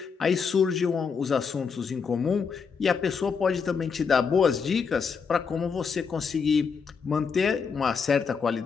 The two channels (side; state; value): right; quieter; 5.8 dB